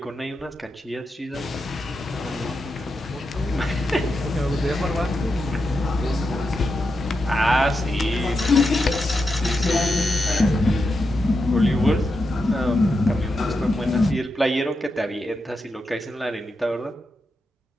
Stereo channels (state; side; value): normal; both; correlation 0.87